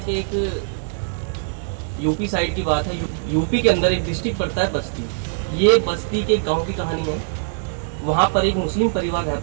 एक यूपी साइड की बात है। यूपी के अंदर एक डिस्ट्रिक्ट पड़ता है बस्ती। ये बस्ती के गांव की कहानी है। वहाँ पर एक मुस्लिम परिवार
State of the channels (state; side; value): silent; left; digital silence